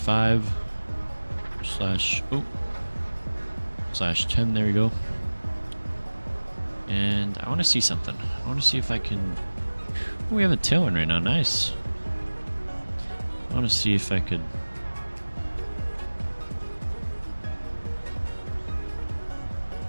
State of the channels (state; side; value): inverted; both; correlation -1.00